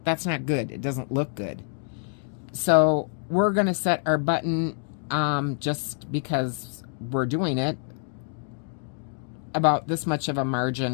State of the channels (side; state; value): right; silent; 56 dB below the other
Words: that's not good. It doesn't look good. So we're going to set our button, just because we're doing it, about this much of a